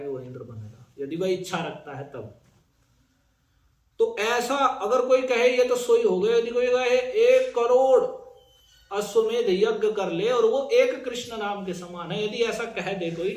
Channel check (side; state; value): both; identical; correlation 1.00